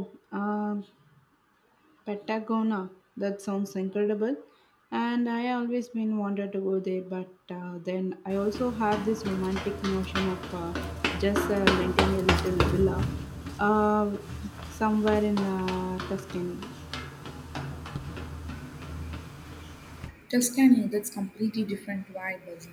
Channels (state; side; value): identical; both; correlation 1.00